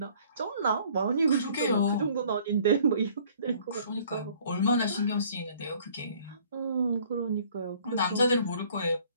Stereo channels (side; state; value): both; inverted; correlation -0.56